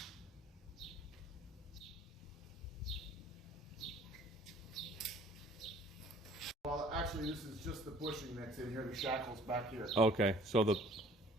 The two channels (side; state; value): both; normal; correlation 0.53